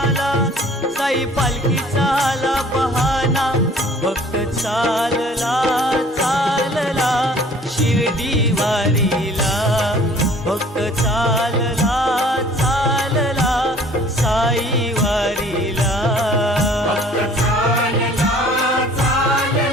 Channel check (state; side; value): normal; both; correlation 0.52